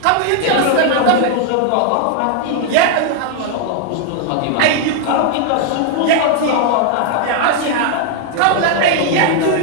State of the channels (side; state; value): both; different; correlation 0.00